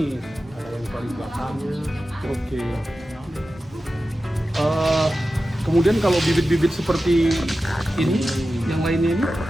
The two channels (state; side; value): normal; both; correlation 0.93